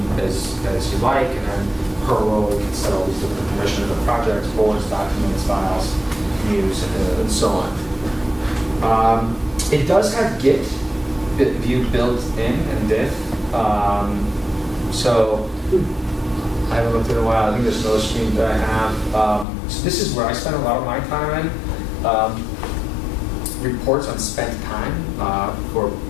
as you like, and then per role, you can set all these different permissions of projects, boards, documents, files, views, and so on. It does have Git view built in and diff. So I haven't looked at it in a while. I think there's another screen that I have. So this is where I spend a lot of my time. Reports on spent time for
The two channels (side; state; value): right; drops out; at 19.5 s